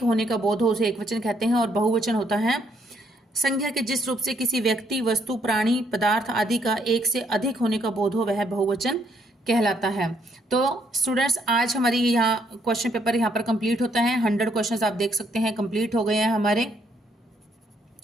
होने का बोध हो उसे एक वचन कहते हैं। और बहुवचन होता है संज्ञा के जिस रूप से किसी व्यक्ति, वस्तु, प्राणी, पदार्थ आदि का एक से अधिक होने का बोध हो वह बहुवचन कहलाता है। तो स्टूडेंट्स, आज हमारी यहाँ क्वेश्चन पेपर यहाँ पर कंप्लीट होता है। 100 क्वेश्चंस आप देख सकते हैं कंप्लीट हो गए हैं हमारे।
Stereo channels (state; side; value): normal; both; correlation 0.71